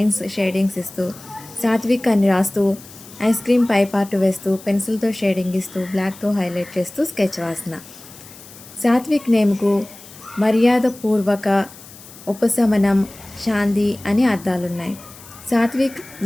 షేడింగ్స్ ఇస్తూ, సాత్విక్ అని రాస్తూ, ఐస్ క్రీమ్ పై పార్ట్ వేస్తూ, పెన్సిల్తో షేడింగ్ ఇస్తూ, బ్లాక్తో హైలైట్ చేస్తూ స్కెచ్ వాసన. సాత్విక్ నేమ్కు మర్యాదపూర్వక, ఉపశమనం, శాంతి అని అర్థాలున్నాయి. సాత్విక్,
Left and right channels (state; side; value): noise; left; hiss, 19 dB below the sound